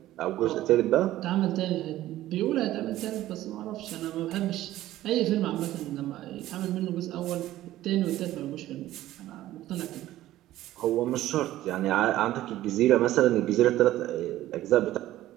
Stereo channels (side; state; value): left; quieter; 14.7 dB